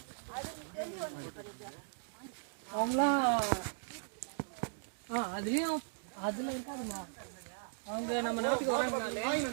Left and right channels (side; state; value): left; silent; digital silence